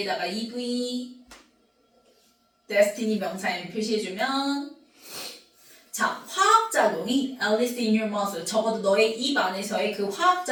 EV destiny 명사에 표시해주면 자 화학작용이 Alice in your mouth 적어도 너의 입 안에서의 그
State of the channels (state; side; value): identical; both; correlation 1.00